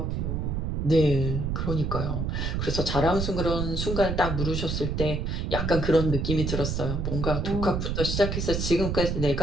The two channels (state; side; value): noise; right; rumble, 1 dB below the sound